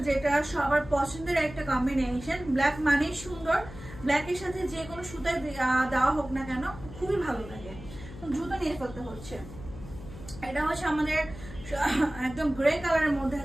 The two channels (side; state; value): left; noise; hum, 14 dB below the sound